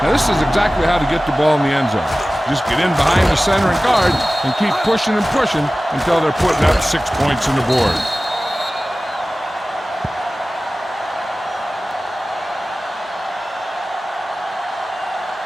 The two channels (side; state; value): both; normal; correlation 0.97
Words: Now this is exactly how to get the ball in the end zone. Just get in behind the center and guard and keep pushing and pushing until they're putting up 6 points on the board.